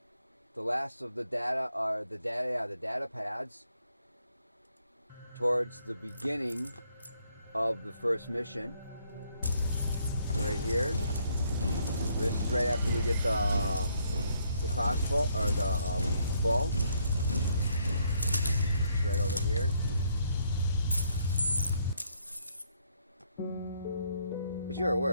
the last of the data, the data pads towards the beginning of the first mission. Right here. This is right after we get the crossbow, or the bow. It's right over here. As you're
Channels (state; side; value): inverted; both; correlation -0.70